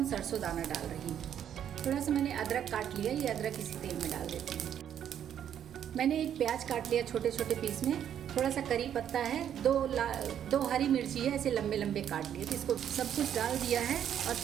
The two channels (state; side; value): quieter; left; 9.6 dB